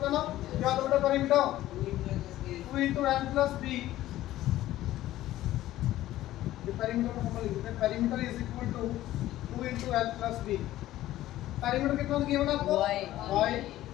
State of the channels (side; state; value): right; quieter; 14.7 dB